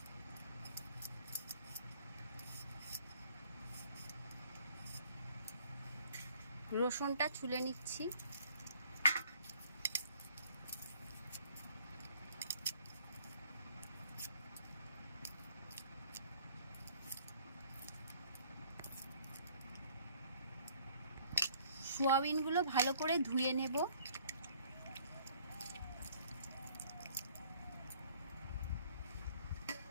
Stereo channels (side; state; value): both; inverted; correlation -0.59